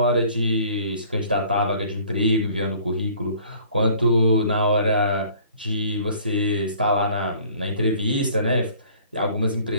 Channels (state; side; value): inverted; both; correlation -0.54